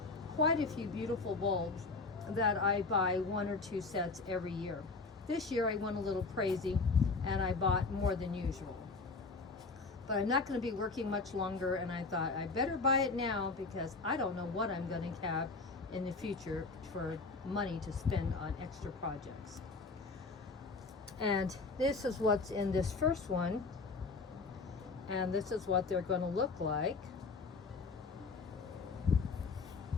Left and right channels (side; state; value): right; quieter; 4.0 dB